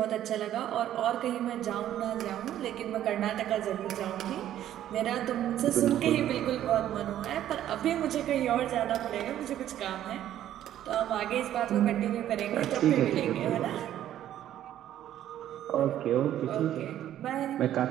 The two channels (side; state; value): left; quieter; 11.8 dB